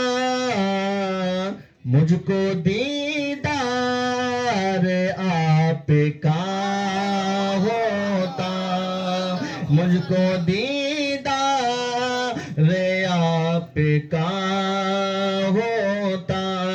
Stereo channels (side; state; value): both; identical; correlation 1.00